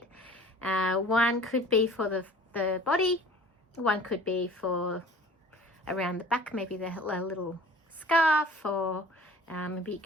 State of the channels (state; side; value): normal; both; correlation 0.47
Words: One could be for the body, one could be for around the back, maybe the little scarf, or maybe you